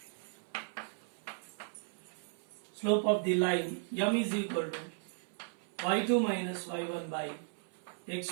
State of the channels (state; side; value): silent; left; 54 dB below the other